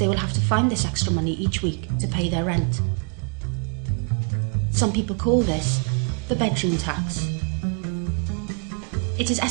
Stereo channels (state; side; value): quieter; left; 39.9 dB